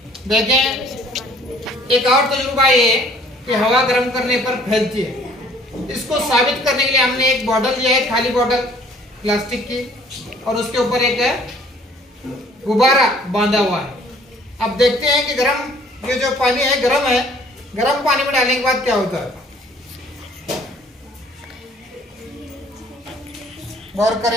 देखें, एक और तजुर्बा ये कि हवा गर्म करने पर फैलती है। इसको साबित करने के लिए हमने एक बॉटल लिया है, खाली बॉटल प्लास्टिक की, और उसके ऊपर एक गुब्बारा बांधा हुआ है। अब देखते हैं कि गर्म ये जो पानी है गर्म है, गर्म पानी में डालने के बाद क्या होता है। गौर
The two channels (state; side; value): normal; both; correlation 0.57